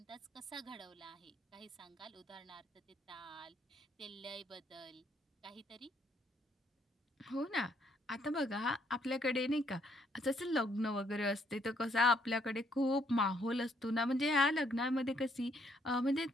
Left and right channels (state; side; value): normal; both; correlation 0.70